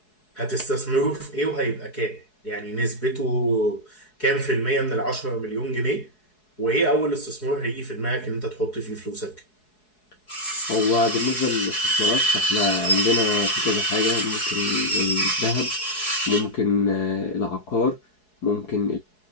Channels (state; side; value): late; right; 4.7 ms